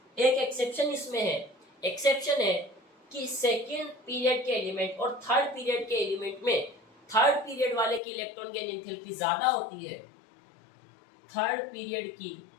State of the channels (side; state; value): right; drops out; at 8.0 s